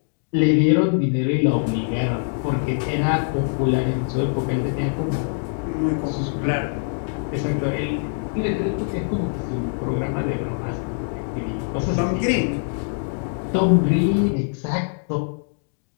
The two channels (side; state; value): right; silent; digital silence